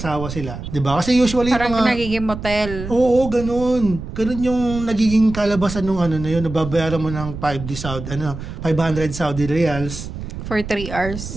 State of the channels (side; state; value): right; noise; rumble, 9 dB below the sound